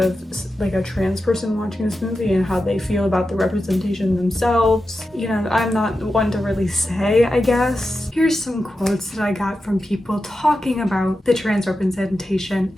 like a trans person watching this movie and how they feel about the representation themselves. You know, I'm not one to really say, I guess. Here's some quotes that I got from people talking about the trans representation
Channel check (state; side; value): normal; both; correlation 0.91